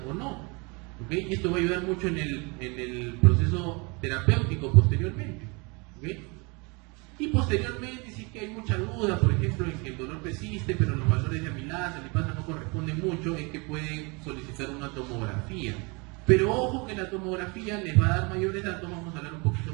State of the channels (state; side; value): quieter; left; 29.5 dB